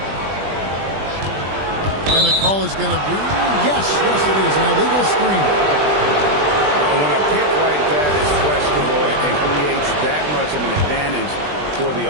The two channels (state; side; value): late; left; 20 ms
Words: And the call is going to be, yes, it is, an illegal screen. When a pick like that is questionable and creates that much of an advantage for the